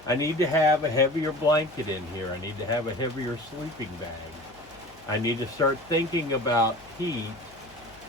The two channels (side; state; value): left; noise; hum, 25 dB below the sound